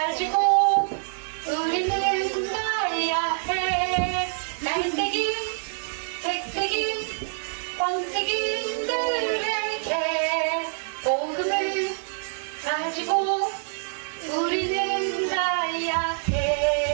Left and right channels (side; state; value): left; silent; digital silence